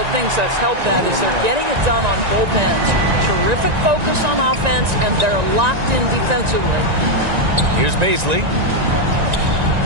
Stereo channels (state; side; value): late; left; 1.9 ms